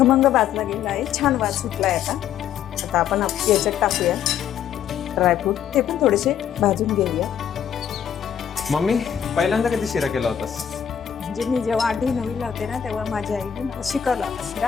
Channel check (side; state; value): right; quieter; 9.0 dB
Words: भाजला गेला आहे, छान वास सुटला आहे. आता आपण याच्यात टाकूया ड्रायफ्रूट, ते पण थोडेसे भाजून घेऊया. मम्मी, पहिल्यांदा कधी शिरा केला होतास? म्हणजे मी जेव्हा 8वी 9वीला होते ना, तेव्हा माझ्या आईने मला शिकवलं होतं